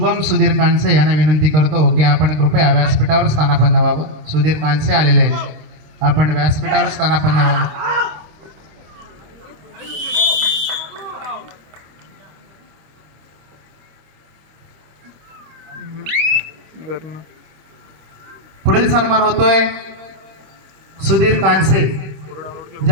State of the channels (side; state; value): left; late; 26 ms